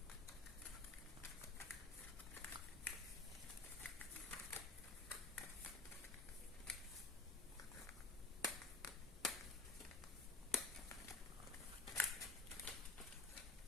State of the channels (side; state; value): right; quieter; 3.2 dB